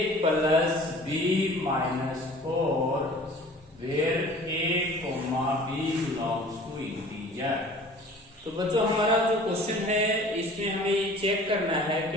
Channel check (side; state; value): both; normal; correlation 0.46